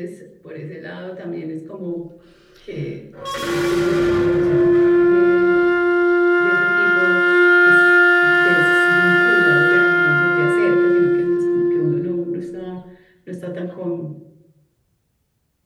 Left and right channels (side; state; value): both; identical; correlation 1.00